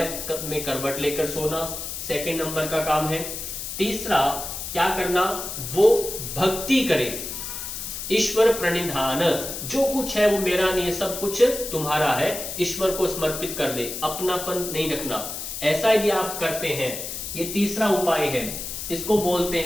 में करवट लेकर सोना, सेकंड नंबर का काम है। तीसरा क्या करना, वो भक्ति करे, ईश्वर प्रणिधान, जो कुछ है वो मेरा नहीं है, सब कुछ तुम्हारा है, ईश्वर को समर्पित कर दे, अपनापन नहीं रखना। ऐसा यदि आप करते हैं, ये तीसरा उपाय है, इसको बोलते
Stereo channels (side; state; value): left; noise; hiss, 6 dB below the sound